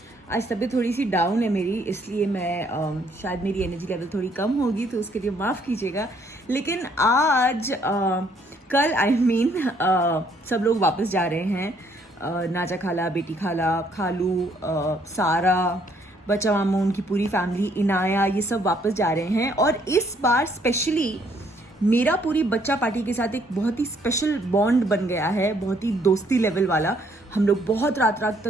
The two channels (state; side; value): normal; both; correlation 0.67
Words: तबीयत थोड़ी सी डाउन है मेरी, इसलिए मैं शायद मेरी एनर्जी लेवल थोड़ी कम होगी, तो उसके लिए माफ़ कीजिएगा। लेकिन आज कल सब लोग वापस जा रहे हैं। नाजा खाला, बेटी खाला, खालू, सारा, बच्चा मामू, उनकी पूरी फैमिली, इनाया, ये सब वापस जा रहे हैं। और इस बार स्पेशली मेरा पूरी बच्चा पार्टी के साथ एक बहुत ही स्पेशल बॉन्ड बन गया है, बहुत ही दोस्ती लेवल वाला। हम लोग बहुत रात रात